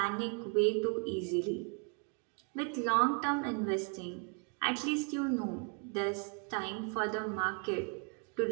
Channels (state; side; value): quieter; left; 39.2 dB